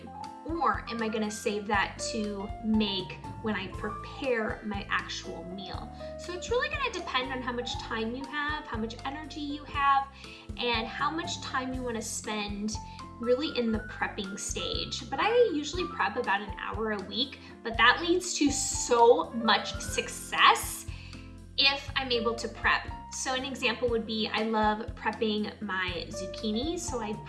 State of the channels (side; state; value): both; identical; correlation 1.00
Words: or am I gonna save that to make when I prepare my actual meal? So it's really gonna depend on how much time you have, how much energy you have, and how much time you wanna spend really in the prepping stage. But I usually prep about an hour a week, but that leads to so much success if I'm able to prep. So an example would be, I love prepping my zucchini, so I